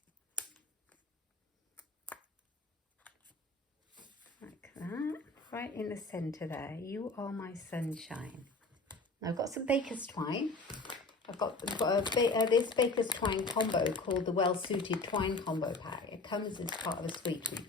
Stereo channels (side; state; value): right; quieter; 3.3 dB